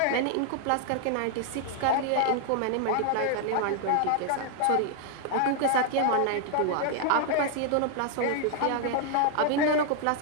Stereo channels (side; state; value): both; different; correlation 0.00